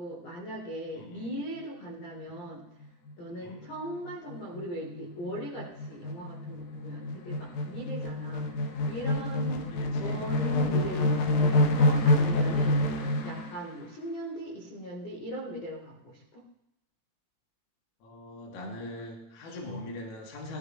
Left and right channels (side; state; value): right; late; 18 ms